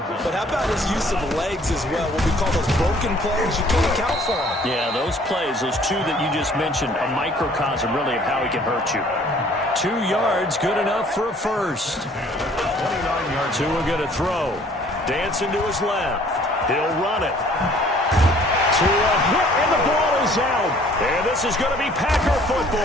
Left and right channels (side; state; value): both; normal; correlation 0.56